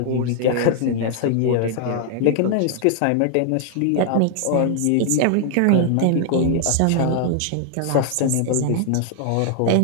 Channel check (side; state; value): both; different; correlation 0.00